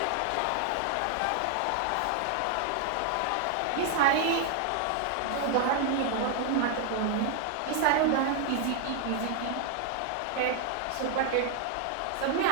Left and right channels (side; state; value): both; different; correlation 0.00